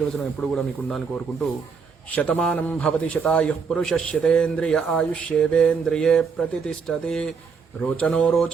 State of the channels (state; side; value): quieter; left; 5.6 dB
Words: ఎప్పుడు కూడా మీకు ఉండాలని కోరుకుంటూ, శతమానం భవతి శతాయుః పురుషः శతేంద్రియ ఆయుష్యేవేంద్రియే ప్రతిష్టతి రోచనో